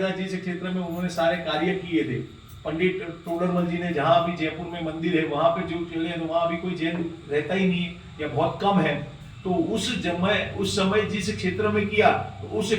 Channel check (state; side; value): identical; both; correlation 1.00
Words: था, जिस क्षेत्र में उन्होंने सारे कार्य किए थे, पंडित टोडरमल जी ने, जहां अभी जयपुर में मंदिर है वहां पे जो चले, तो वहां अभी कोई जैन रहता ही नहीं है या बहुत कम है। तो उस समय जिस क्षेत्र में किया, तो उस